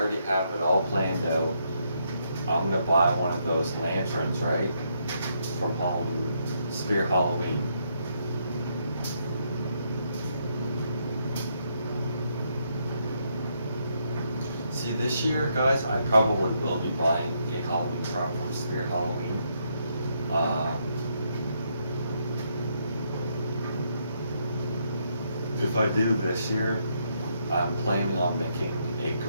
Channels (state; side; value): inverted; both; correlation -0.76